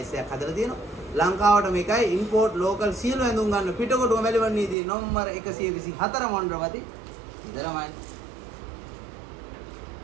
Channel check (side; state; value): left; drops out; at 4.8 s